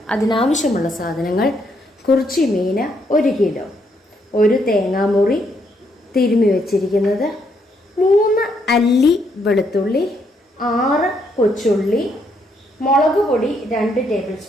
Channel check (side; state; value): both; normal; correlation 0.74